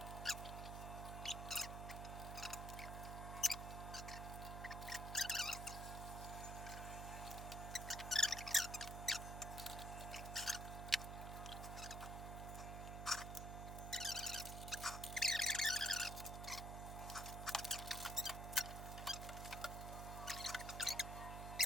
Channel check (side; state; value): right; noise; hum, 5 dB below the sound